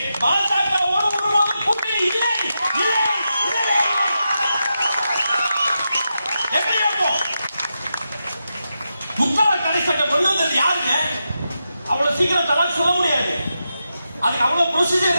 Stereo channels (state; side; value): inverted; both; correlation -0.88